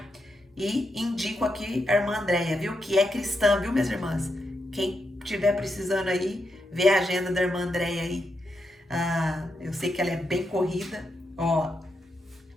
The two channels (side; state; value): both; normal; correlation 0.83